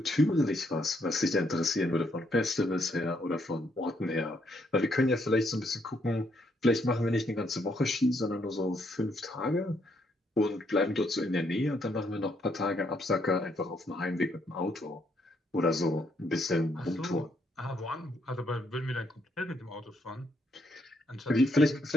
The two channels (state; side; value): normal; both; correlation 0.73